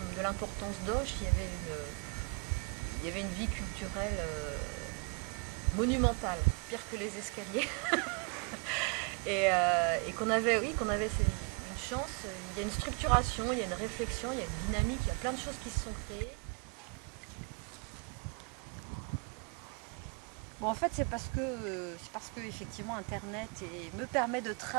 de l'importance d'Auch, il y avait une vie culturelle monumentale, pire que les escaliers. et qu'on avait une chance, il y a une structuration, il y a une réflexion, il y a une dynamique, il y a plein de choses qui se sont créées. Bon, en fait, c'est parce que effectivement Internet me permet de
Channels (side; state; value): left; quieter; 34.8 dB